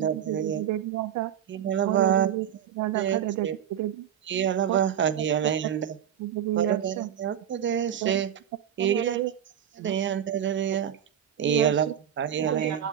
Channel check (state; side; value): quieter; left; 9.5 dB